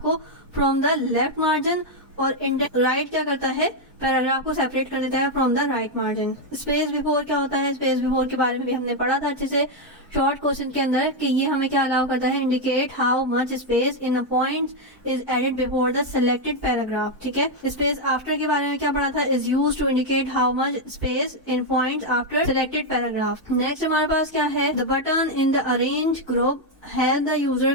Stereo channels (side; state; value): both; normal; correlation 0.01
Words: को फ्रॉम द लेफ्ट मार्जिन, और इंडेंट राइट क्या करता है? पैराग्राफ को सेपरेट कर देता है from the right margin. Space before क्या होता है? स्पेस बिफोर के बारे में भी हमने पढ़ा था अच्छे से शॉर्ट क्वेश्चन के अंदर, कि ये हमें क्या अलाउ करता है? Indicate how much space in a point is added before the selected paragraph, ठीक है। स्पेस आफ्टर के बारे में क्या पढ़ा था? Is used to indicate how much space in points after selected paragraph. Next हमारे पास क्या है? The button in the arrange group help the user